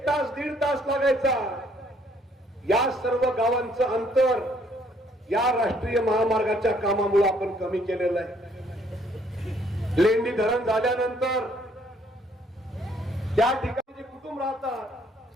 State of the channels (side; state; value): both; normal; correlation 0.65